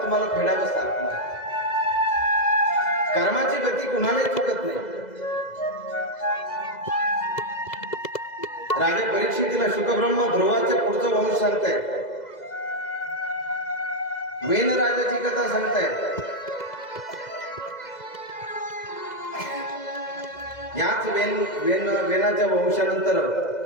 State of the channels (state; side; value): late; right; 2.0 ms